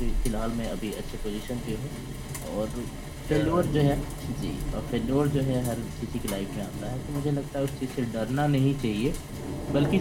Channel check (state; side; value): identical; both; correlation 1.00